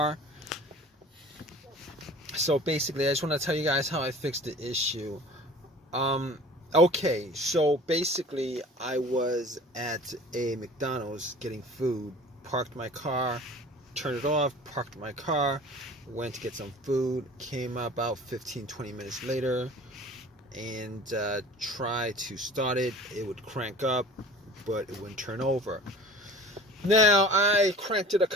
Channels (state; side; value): normal; both; correlation 0.43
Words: So basically, I just want to tell you guys how I fixed the issue. Okay, so basically, I was at a McDonald's getting food, parked my car, turned it off, parked my car, went to get some food, came about 15-20 minutes later, and try to start it. It would crank up, but it wouldn't turn over. Now, I cranked it a